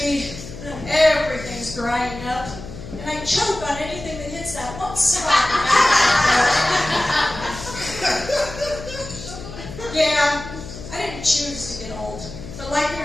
be. Everything's drying up. And I choke on anything that hits that one spot. Yeah, I didn't choose to get old. But like it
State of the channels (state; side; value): noise; left; hum, 12 dB below the sound